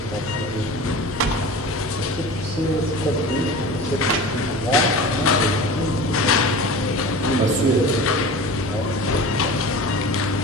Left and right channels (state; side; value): normal; both; correlation 0.35